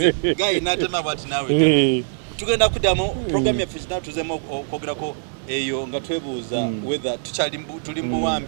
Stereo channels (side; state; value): left; silent; digital silence